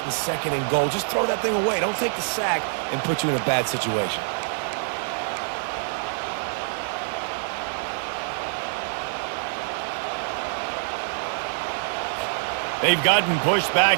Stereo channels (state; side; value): silent; left; digital silence